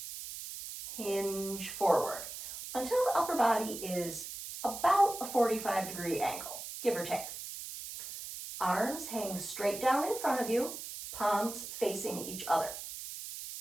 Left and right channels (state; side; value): noise; right; hiss, 9 dB below the sound